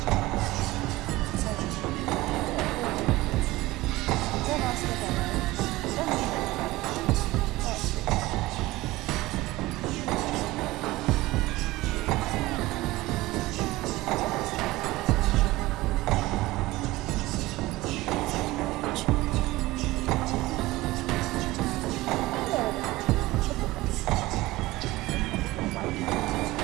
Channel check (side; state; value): left; quieter; 18.9 dB